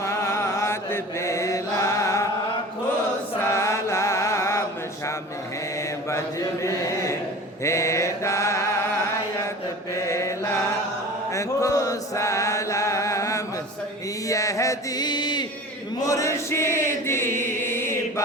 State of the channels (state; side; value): normal; both; correlation 0.38